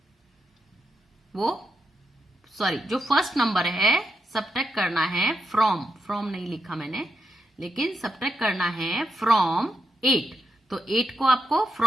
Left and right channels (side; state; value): both; normal; correlation 0.85